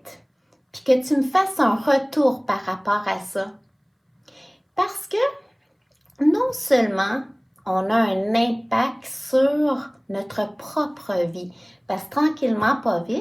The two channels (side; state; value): both; identical; correlation 1.00